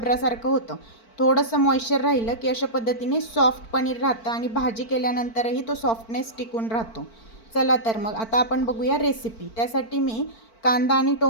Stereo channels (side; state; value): right; late; 4.5 ms